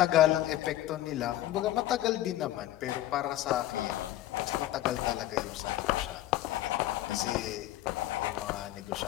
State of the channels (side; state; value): right; quieter; 14.4 dB